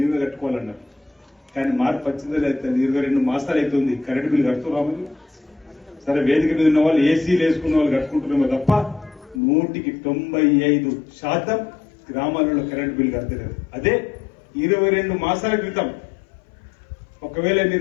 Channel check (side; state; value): right; drops out; at 9.4 s